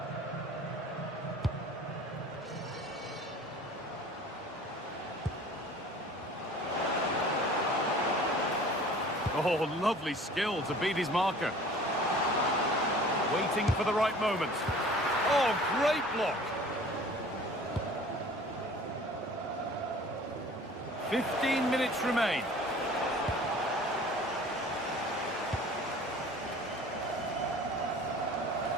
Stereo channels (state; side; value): normal; both; correlation 0.46